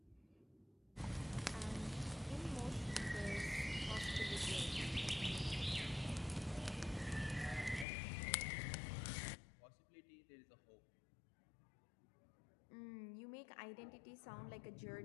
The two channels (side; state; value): right; drops out; at 7.9 s